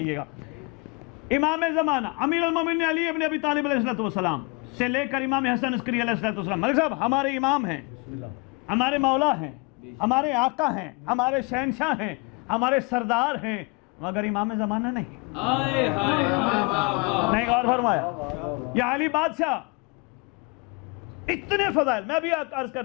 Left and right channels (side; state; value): right; quieter; 29.3 dB